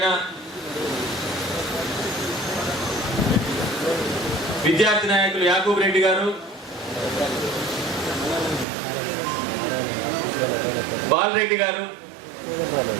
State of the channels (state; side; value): drops out; left; at 8.7 s